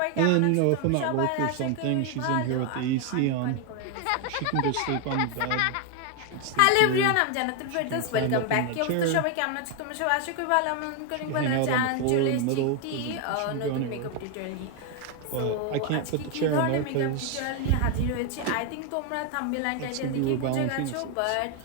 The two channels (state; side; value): different; both; correlation 0.01